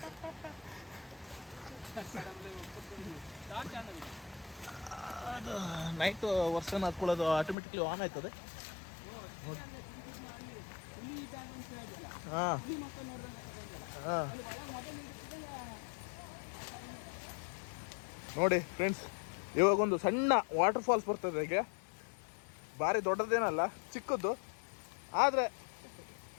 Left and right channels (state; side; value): drops out; right; at 7.6 s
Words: ಅದು ನೈಟ್ ವರ್ಷನ್ ಹಾಕೊಳ್ಳೋದು ಆಟೋಮೆಟಿಕ್ಲಿ ಆನ್ ಆಯ್ತದೆ. ಹಾಂ ಹಾಂ ನೋಡಿ ಫ್ರೆಂಡ್ಸ್, ಇವಾಗ ಒಂದು ಸಣ್ಣ ವಾಟರ್ ಫಾಲ್ಸ್ ಬರ್ತದೆ. ಈಗ ಭಾರಿ ದೊಡ್ಡದೇನಲ್ಲ, ಚಿಕ್ಕದ್ದು. ಆದರೆ